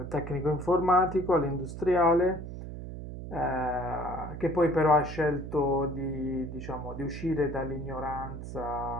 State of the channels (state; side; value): noise; right; hum, 9 dB below the sound